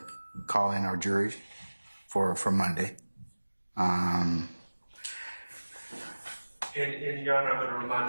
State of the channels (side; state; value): both; inverted; correlation -1.00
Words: call in our juries for Monday. And Your Honor, I'm going to